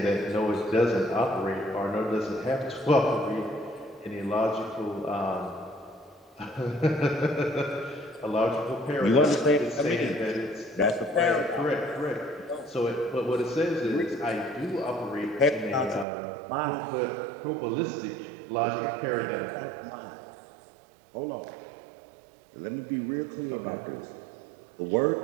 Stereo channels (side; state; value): left; drops out; at 16.1 s